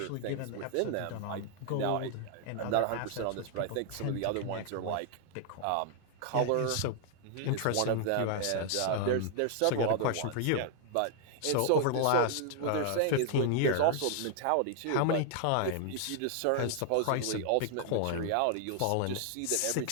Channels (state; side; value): different; both; correlation 0.00